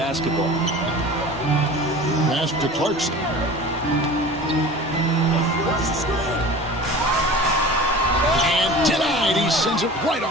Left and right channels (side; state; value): both; normal; correlation 0.38